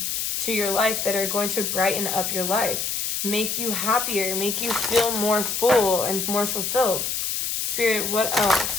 to your life that are going to brighten up your life, make you happier, make you feel more full and more fulfilled. Spirit, what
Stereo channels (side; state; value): left; noise; hiss, 1 dB below the sound